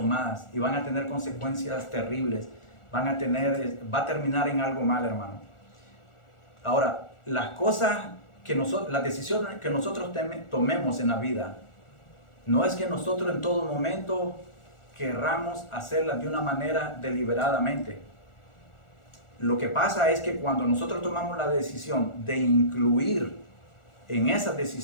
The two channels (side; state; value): right; late; 1.4 ms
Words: y van a tener consecuencias terribles, va a terminar en algo mal, hermano. Ahora, las decisiones que nosotros tomemos en la vida, no es que nosotros en todo momento querramos hacerlas de una manera deliberadamente. Lo que pasa es que cuando nosotros tomamos la decisión de incluir en esas